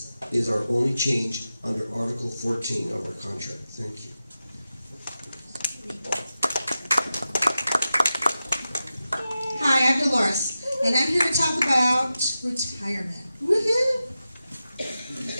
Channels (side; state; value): both; inverted; correlation -0.92